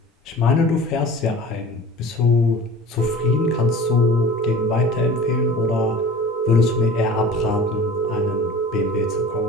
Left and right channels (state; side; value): normal; both; correlation 0.40